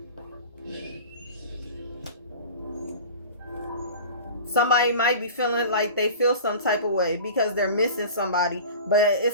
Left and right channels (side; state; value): both; inverted; correlation -0.38